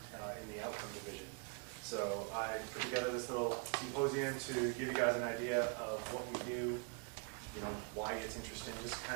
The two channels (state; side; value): quieter; left; 31.6 dB